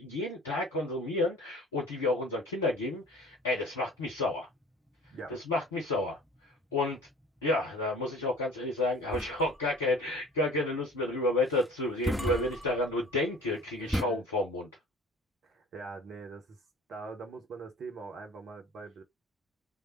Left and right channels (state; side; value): normal; both; correlation 0.45